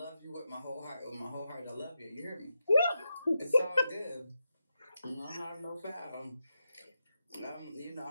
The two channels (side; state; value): both; inverted; correlation -0.88